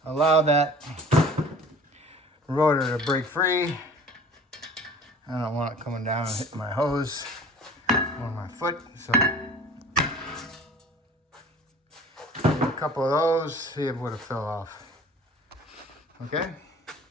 allow that rotor to break free. I don't want it coming down and hitting my hose or my foot, so a couple of those, see if it would have fell off. Okay,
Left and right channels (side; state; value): both; normal; correlation 0.46